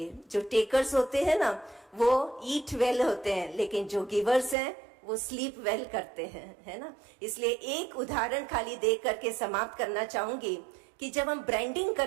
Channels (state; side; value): drops out; left; at 4.5 s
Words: जो टेकर्स होते हैं ना वो ईट वेल होते हैं, लेकिन जो गिवर्स हैं वो स्लीप वेल करते हैं, है ना। इसलिए एक उदाहरण खाली दे करके समाप्त करना चाहूंगी कि जब हम ब्रांडिंग